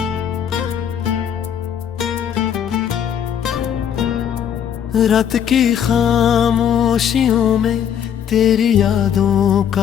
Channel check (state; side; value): quieter; right; 8.9 dB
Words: रात की खामोशियों में तेरी यादों